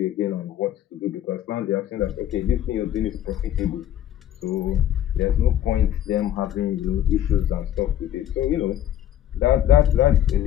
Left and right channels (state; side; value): quieter; right; 11.3 dB